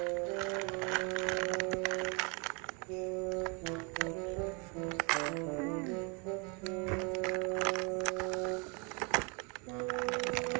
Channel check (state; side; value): quieter; left; 32.5 dB